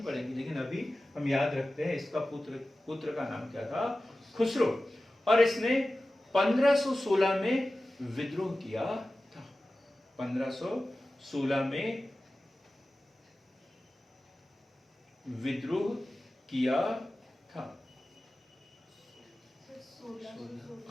लेकिन अभी हम याद रखते हैं इसका पुत्र का नाम क्या था? खुसरो। और इसने 1516 में विद्रोह किया था। 1516 में विद्रोह किया था।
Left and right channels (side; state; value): both; normal; correlation 0.95